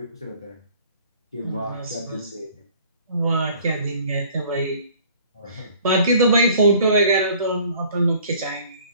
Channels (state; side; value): inverted; both; correlation -0.53